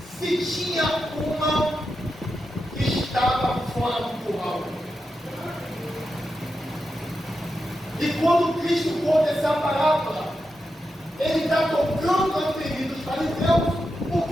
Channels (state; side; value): normal; both; correlation 0.88